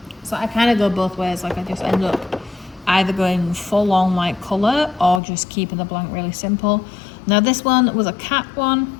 So I kind of go both ways. Like I just end up either going full on like colour or just keeping the blank really simple. Now this one was a cat one.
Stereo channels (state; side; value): drops out; right; at 5.2 s